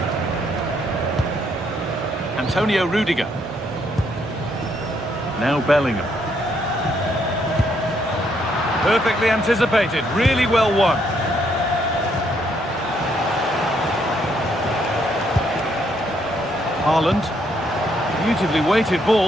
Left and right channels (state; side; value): normal; both; correlation 0.72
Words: Antonio Rudiger. Now Bellingham. Perfectly anticipated, really well won. Haaland. Beautifully weighted